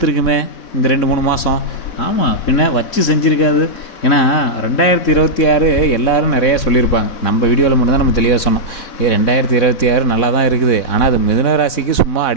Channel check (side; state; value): right; late; 4.1 ms